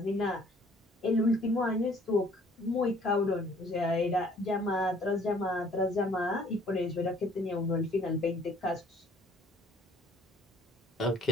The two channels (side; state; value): both; normal; correlation 0.58